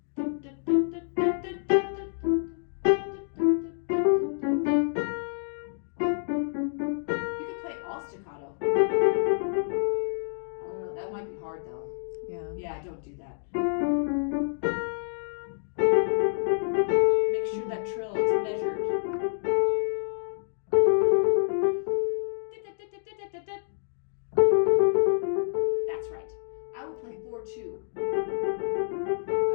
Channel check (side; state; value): right; silent; digital silence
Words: You can play all staccato. I don't know, that might be hard though. Yeah. Yeah, don't do that. Make sure that trill is measured. That's right. I will play 4-2.